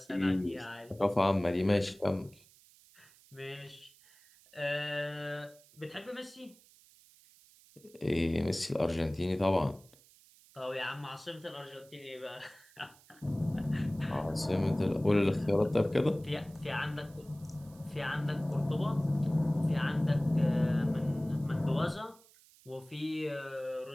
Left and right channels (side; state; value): right; noise; hiss, 26 dB below the sound